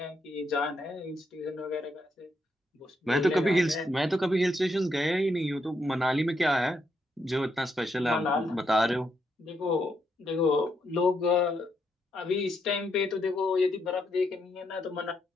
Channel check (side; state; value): both; normal; correlation 0.79